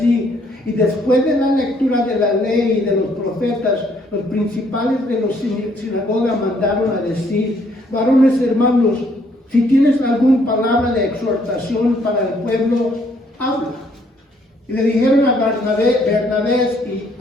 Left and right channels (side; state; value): both; normal; correlation 0.67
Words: y después de la lectura de la ley y de los profetas, los principales de la sinagoga mandaron a decir: varones hermanos, si tienes alguna palabra de exhortación para el pueblo, habla. Y le dijeron a Bernabé y